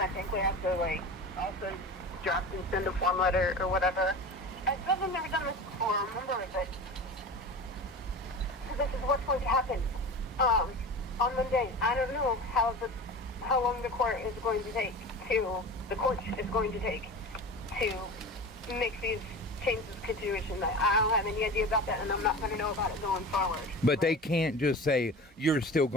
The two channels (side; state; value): both; normal; correlation 0.32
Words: think we have to, like, also draft and send a form letter or whatever. I still have never done this before, remember, but so this is what's going to happen. On Monday, I don't know how long the court is going to take to make these changes to situation. I don't have any idea about that, and I'm not going to know about it going forward. But right? they can't just say you're still